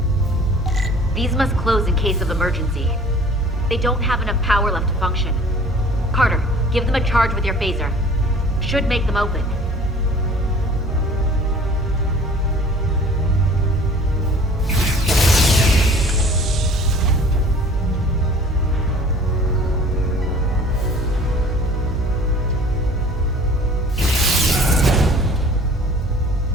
These must close in case of emergency. They don't have enough power left to function. Carter, give them a charge with your phaser. Should make them open.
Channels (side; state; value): both; normal; correlation 0.49